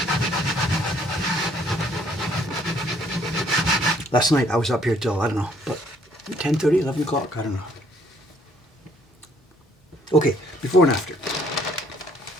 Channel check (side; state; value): both; normal; correlation 0.64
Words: Last night I was up here till, I don't know, but 10:30, 11 o'clock, I don't know. Okay, before and after.